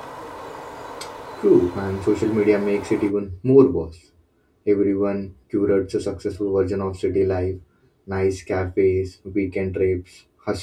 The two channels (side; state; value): both; identical; correlation 1.00